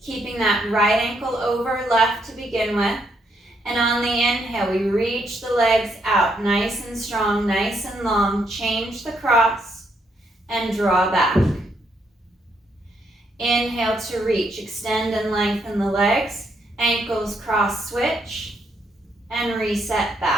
keeping that right ankle over left to begin with. And on the inhale, we reach the legs out, nice and strong, nice and long. Change the cross. And draw back. Inhale to reach, extend and lengthen the legs, ankles cross switch, and reset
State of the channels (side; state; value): both; normal; correlation 0.75